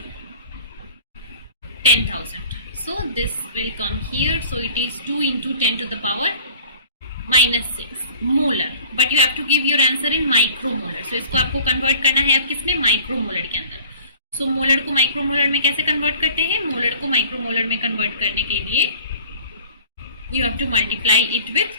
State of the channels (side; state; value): both; inverted; correlation -0.48